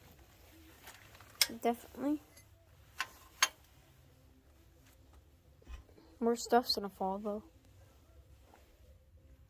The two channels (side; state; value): both; identical; correlation 1.00